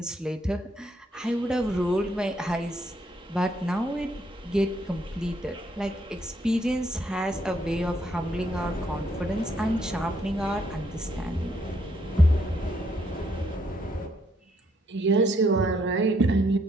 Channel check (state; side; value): normal; both; correlation 0.72